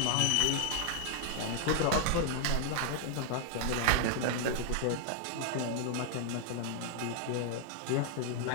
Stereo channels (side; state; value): both; different; correlation -0.01